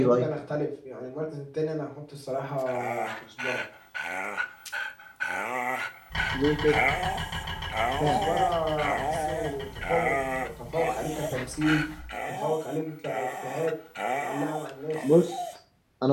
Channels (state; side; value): identical; both; correlation 1.00